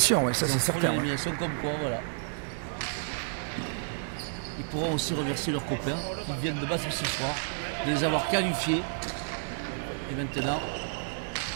ouais, ça c'est certain. L'élimination comme quoi, voilà. Ils pourront aussi remercier leurs copains qui viennent de battre ce soir, de les avoir qualifiés. Et maintenant,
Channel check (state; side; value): silent; left; digital silence